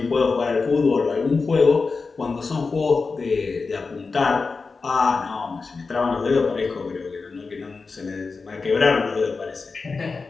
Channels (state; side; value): quieter; right; 4.4 dB